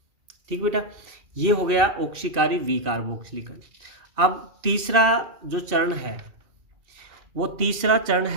ठीक बेटा, ये हो गया ऑक्सीकारी वी कार्बोक्सिलीकरण। अब तीसरा जो चरण है, वो तीसरा चरण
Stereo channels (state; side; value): late; left; 2.6 ms